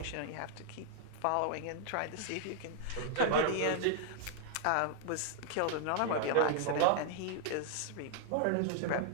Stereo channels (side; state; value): both; different; correlation -0.01